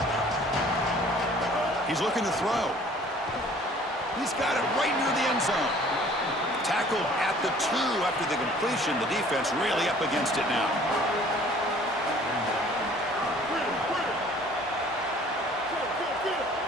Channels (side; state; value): both; normal; correlation 0.53